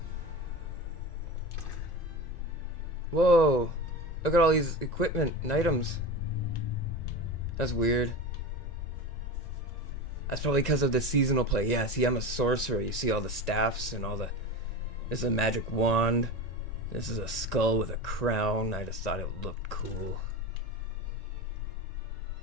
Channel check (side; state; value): right; late; 1.9 ms